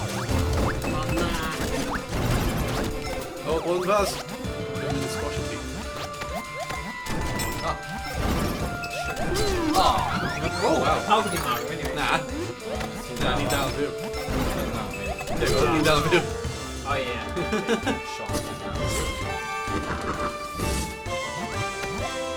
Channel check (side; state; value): both; identical; correlation 1.00